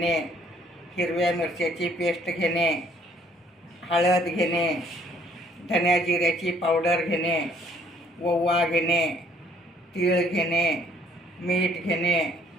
हिरव्या मिरच्याची पेस्ट घेणे, हळद घेणे, धन्या जिऱ्याची पावडर घेणे, ओवा घेणे, तीळ घेणे, मीठ घेणे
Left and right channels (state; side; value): normal; both; correlation 0.62